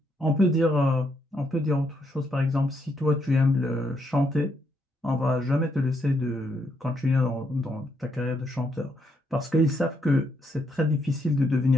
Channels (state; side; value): normal; both; correlation 0.76